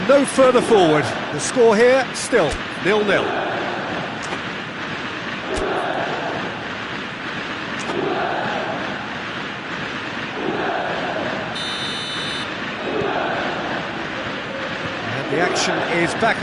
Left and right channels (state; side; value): identical; both; correlation 1.00